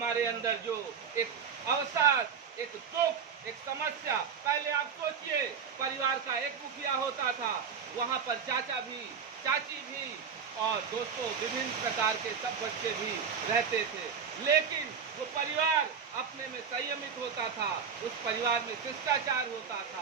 अंदर जो एक अवसाद, एक दुख, एक समस्या, पहले आप सोचिए परिवार का एक मुखिया होता था, वहां पर चाचा भी, चाची भी और दोस्तों विभिन्न प्रकार के सब बच्चे भी रहते थे। लेकिन वो परिवार अपने में संयमित होता था, उस परिवार में शिष्टाचार होता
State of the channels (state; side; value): quieter; left; 6.6 dB